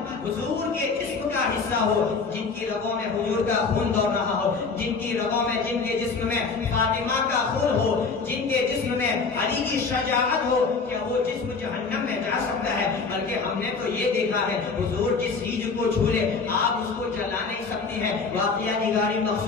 حضور کے جسم کا حصہ ہو، جن کی رگوں میں حضور کا خون دوڑ رہا ہو، جن کی رگوں میں جن کے جسم میں فاطمہ کا خون ہو، جن کے جسم میں علی کی شجاعت ہو، کیا وہ جسم جہنم میں جا سکتا ہے؟ بلکہ ہم نے تو یہ دیکھا ہے حضور جس چیز کو چھو لے آپ اس کو جلا نہیں سکتی ہیں. واقعہ نگاری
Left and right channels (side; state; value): right; quieter; 4.7 dB